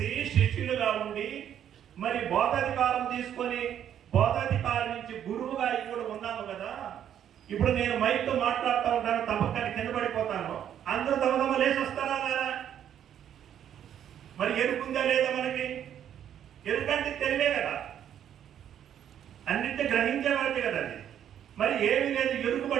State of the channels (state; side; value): quieter; left; 9.9 dB